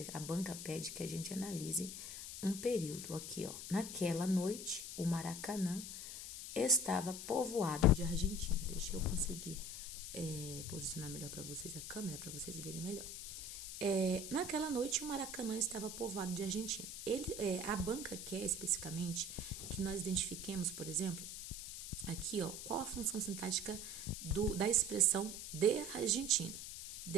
a banca pede que a gente analise um período. Aqui, ó, naquela noite, o Maracanã estava povoado de argentinos. Deixa eu conseguir posicionar melhor para vocês a câmera, para vocês verem melhor. Naquela noite, o Maracanã estava povoado de argentinos. A banca quer especificamente que nós identifiquemos, por exemplo, aqui, ó, qual a função sintática da expressão de argentino.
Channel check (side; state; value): left; noise; hiss, 8 dB below the sound